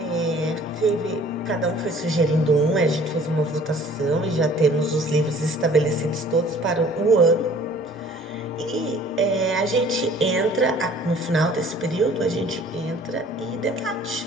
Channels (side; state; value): both; normal; correlation 0.52